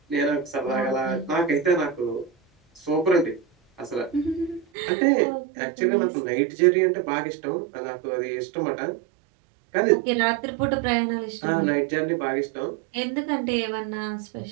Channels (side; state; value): left; drops out; at 4.7 s